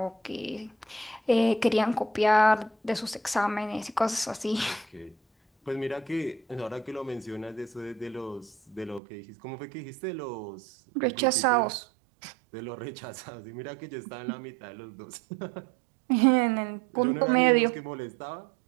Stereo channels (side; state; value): left; drops out; at 9.0 s